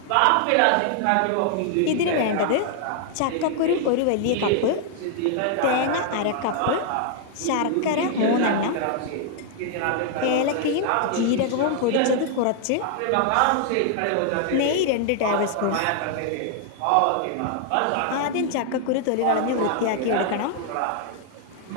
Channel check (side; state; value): both; different; correlation 0.00